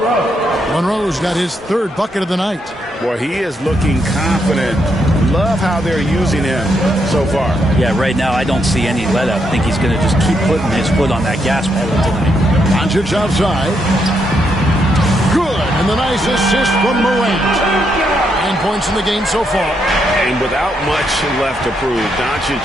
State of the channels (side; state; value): both; normal; correlation 0.78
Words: Monroe's got his 3rd bucket of the night. Boy, he is looking confident. Love how they're using him so far. Yeah, right now I don't see any let up. I think he's going to just keep putting his foot on that gas pedal tonight. Doncic outside. Good, and the nice assist from Morant. 9 points in the game so far. And without much left to prove, Doncic